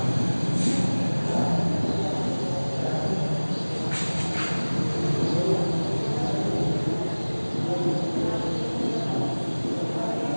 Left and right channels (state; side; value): inverted; both; correlation -1.00